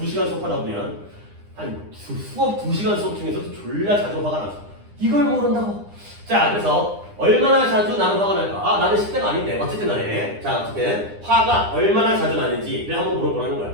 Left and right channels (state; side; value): late; left; 9.9 ms